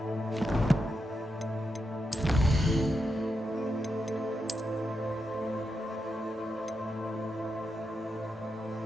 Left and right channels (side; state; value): both; normal; correlation 0.86